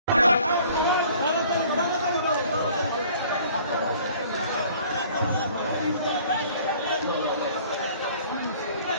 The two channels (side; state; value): both; inverted; correlation -0.53